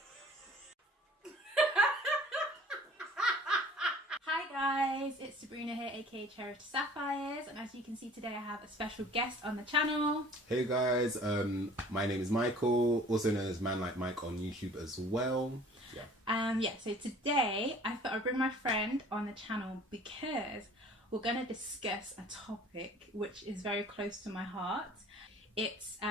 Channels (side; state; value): both; normal; correlation 0.50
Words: Hi guys, it's Sabrina here, aka Cherished Sapphires, and as you can see today I have a special guest on the channel. Hey guys, my name is Michael, also known as ManLikeMike on YouTube as well. So today I thought I'd bring my friend on the channel because we're going to discuss a topic which is very close to my heart. It's